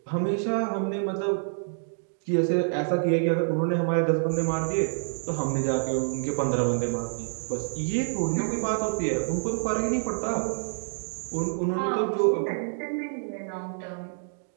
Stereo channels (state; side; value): silent; left; digital silence